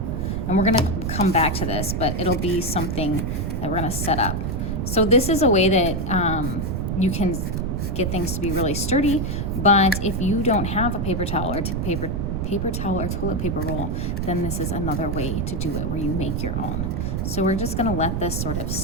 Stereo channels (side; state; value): right; noise; rumble, 1 dB below the sound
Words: And we're gonna come back to this, but it'll be something that we're gonna set up. So this is a way that you can get things to be really sturdy, but if you don't have a paper towel or paper towel or toilet paper roll, then this is another way to do it where you make your own. So we're just gonna let this sort of